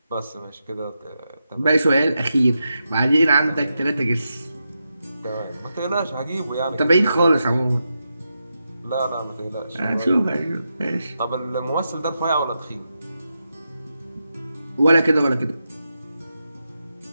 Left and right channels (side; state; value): both; inverted; correlation -0.87